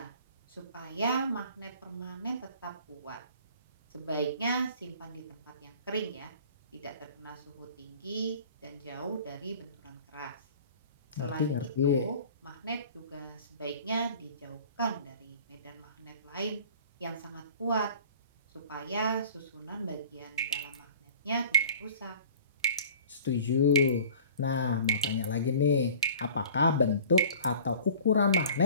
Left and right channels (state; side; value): inverted; both; correlation -0.46